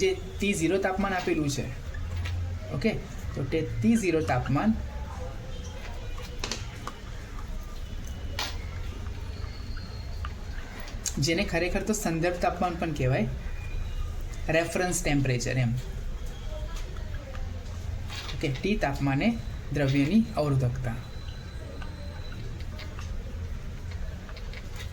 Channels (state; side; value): identical; both; correlation 1.00